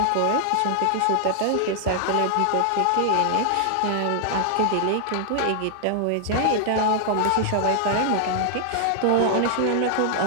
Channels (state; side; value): different; both; correlation 0.00